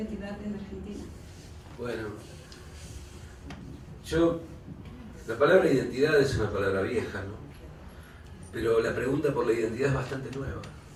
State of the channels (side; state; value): both; identical; correlation 1.00